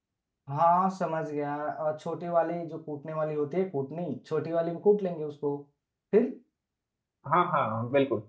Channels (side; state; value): both; identical; correlation 1.00